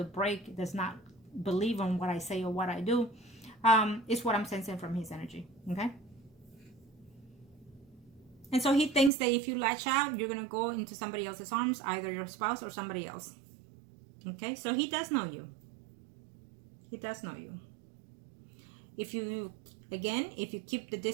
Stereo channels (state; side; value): drops out; left; at 9.1 s